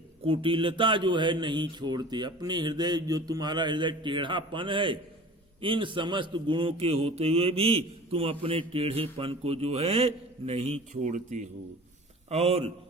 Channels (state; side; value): normal; both; correlation 0.41